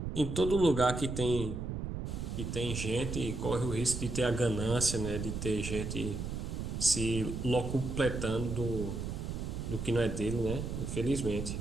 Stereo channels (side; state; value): right; noise; rumble, 4 dB below the sound